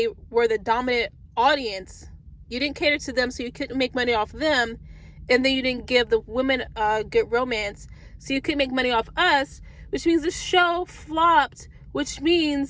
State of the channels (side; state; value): both; identical; correlation 1.00